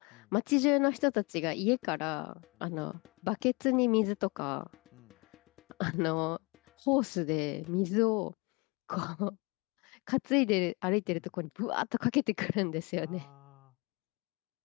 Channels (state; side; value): quieter; right; 28.6 dB